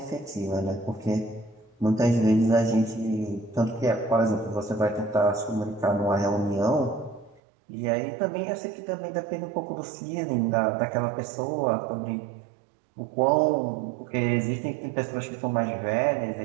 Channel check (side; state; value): left; drops out; at 7.4 s